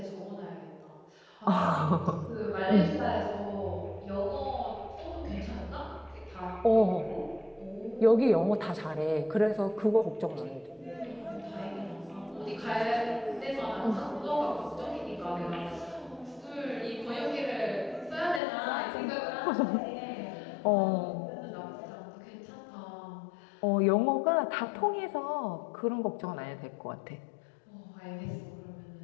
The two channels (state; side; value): drops out; right; at 18.4 s